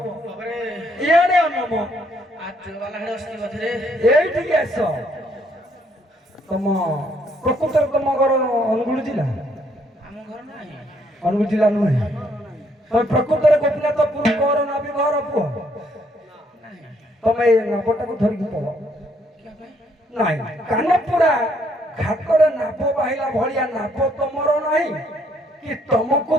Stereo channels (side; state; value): both; normal; correlation 0.69